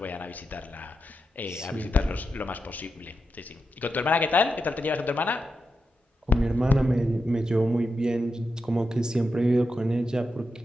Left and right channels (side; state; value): both; normal; correlation 0.88